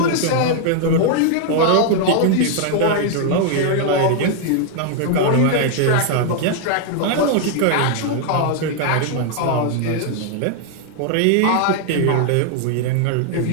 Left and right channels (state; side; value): different; both; correlation 0.00